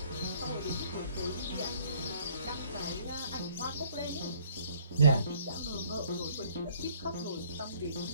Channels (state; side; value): inverted; both; correlation -0.60